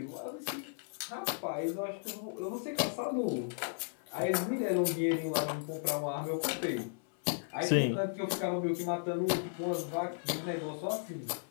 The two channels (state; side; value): silent; right; 54 dB below the other